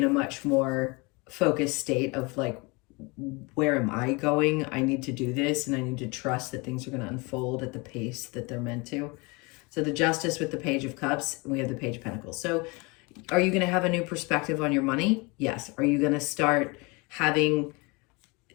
a much more focused state of like, where am I going? I need to do this, and I need to trust that things are going to unfold at the pace that they're meant to. So the Justice with the Page of Cups, and we have the Page of Pentacles. So are you going to have a new perspective on your money? Yes. Are you going to start having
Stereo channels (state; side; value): quieter; right; 27.5 dB